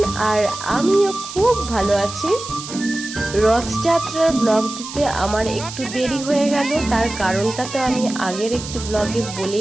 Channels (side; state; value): right; noise; hiss, 11 dB below the sound